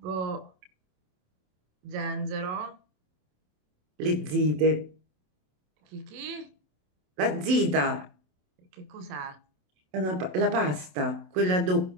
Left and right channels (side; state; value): left; late; 27 ms